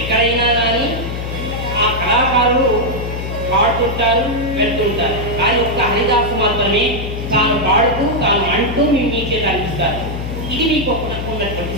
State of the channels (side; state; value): left; noise; hum, 5 dB below the sound